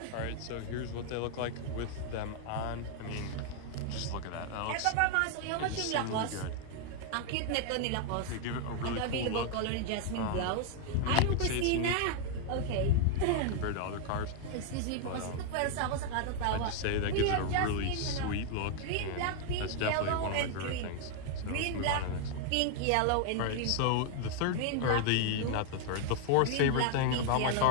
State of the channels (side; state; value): both; different; correlation 0.00